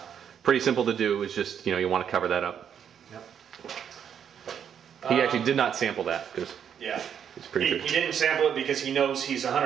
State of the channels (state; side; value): quieter; left; 8.3 dB